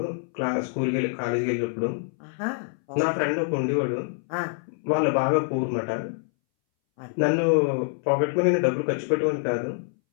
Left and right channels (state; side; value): silent; right; 61 dB below the other